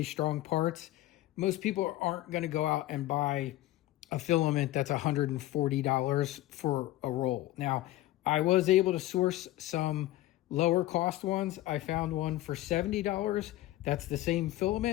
strong parts, most people aren't going to go out and buy a filament that's $140 for a roll. Now, I was able to source some lower cost ones. I found one for $70. That's the same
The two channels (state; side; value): quieter; right; 15.9 dB